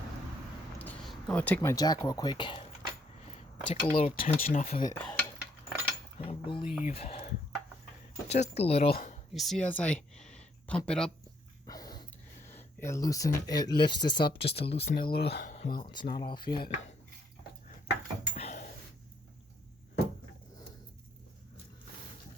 I'm gonna take my jack real quick. Take a little tension off of it. I believe just a little. You see, as I pump it up, it lifts this up just to loosen it a little. Well, it's not off yet.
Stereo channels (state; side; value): normal; both; correlation 0.70